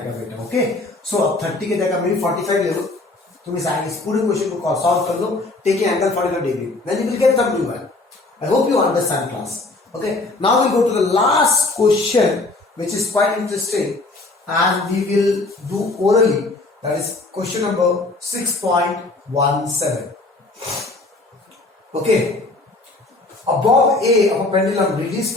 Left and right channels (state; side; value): quieter; right; 3.2 dB